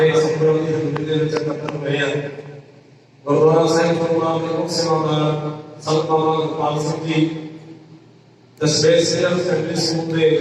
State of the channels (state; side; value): identical; both; correlation 1.00